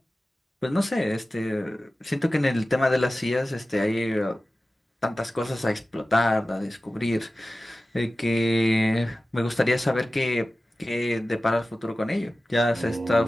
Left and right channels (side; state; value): both; normal; correlation 0.95